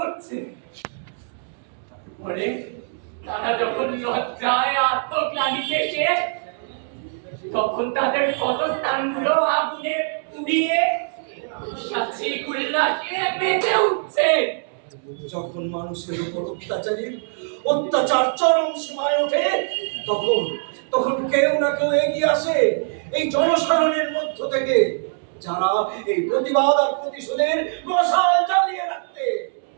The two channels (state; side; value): silent; left; 64 dB below the other